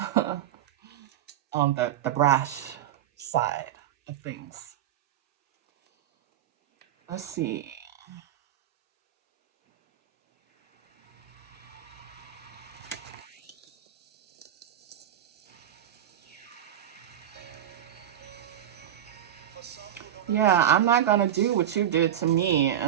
on the brash side of things. Let's see. Yeah, I'm not gonna do what you did to me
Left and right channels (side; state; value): left; quieter; 11.0 dB